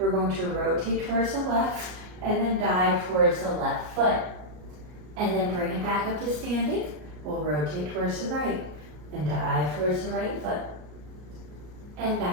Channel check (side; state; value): left; late; 33 ms